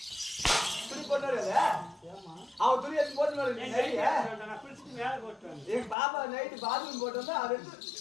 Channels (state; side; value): drops out; right; at 6.0 s